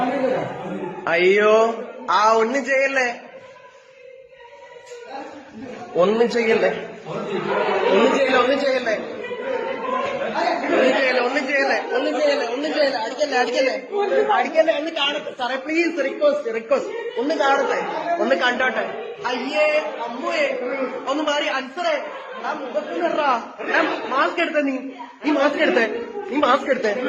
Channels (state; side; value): identical; both; correlation 1.00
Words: അയ്യോ ഒന്നും ചെയ്യല്ലേ, ഒന്നും ചെയ്യല്ലേ, അടിക്കല്ലേ. ഒന്ന് കാണട്ടെ സാറേ, പ്ലീസ്, റിക്വസ്റ്റ് ഒന്ന് കാണട്ടെ, ഒന്ന് കണ്ടോട്ടെ. അയ്യേ അമ്മേ ഒന്ന് മാറി. അൻസറേ ആ മുഖത്തിനറാ, മാസ്ക് എടുത്തേ, നീ മാസ്ക് എടുത്തേ.